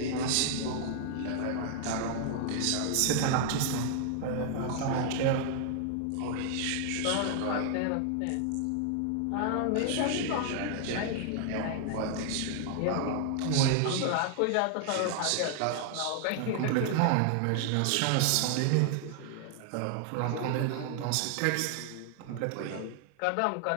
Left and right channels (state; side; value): different; both; correlation 0.00